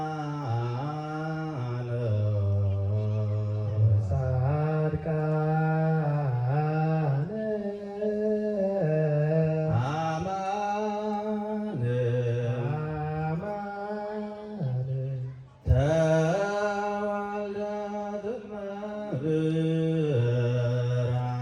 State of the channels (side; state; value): both; identical; correlation 1.00